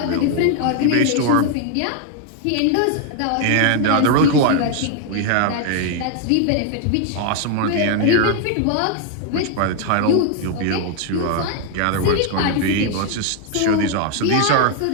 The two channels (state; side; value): different; both; correlation 0.00